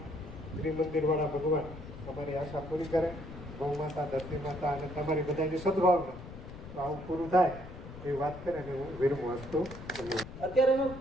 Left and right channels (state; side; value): noise; left; rumble, 13 dB below the sound